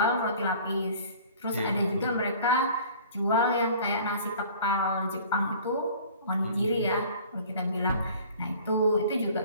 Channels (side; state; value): both; inverted; correlation -0.48